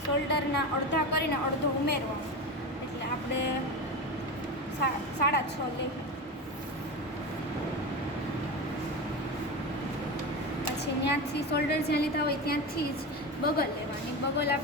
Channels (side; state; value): both; normal; correlation 0.22